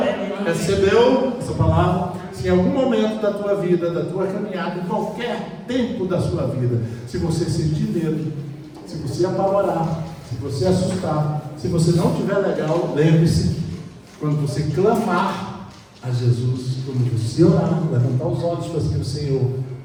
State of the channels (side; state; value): both; identical; correlation 1.00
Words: Recebeu essa palavra? Se em algum momento da tua vida, da tua caminhada, em qualquer tempo da sua vida, se você sentir medo, se você apavorar, se você assustar, se você não estiver legal, lembre-se, quando você clamar a Jesus, quando você orar, levantar os olhos para o Senhor,